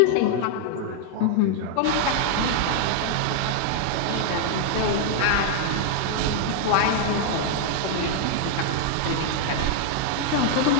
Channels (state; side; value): different; both; correlation 0.00